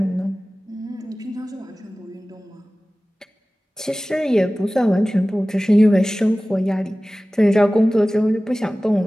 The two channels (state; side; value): normal; both; correlation 0.97